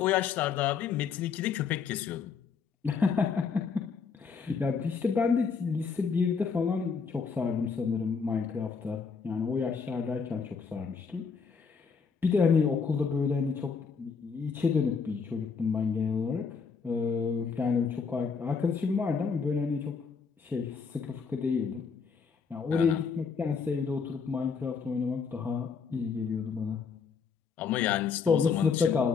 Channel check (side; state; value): right; quieter; 5.6 dB